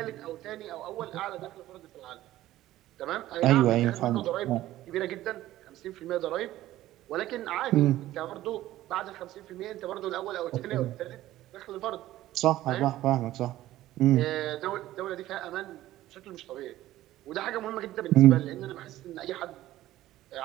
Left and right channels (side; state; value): left; quieter; 14.9 dB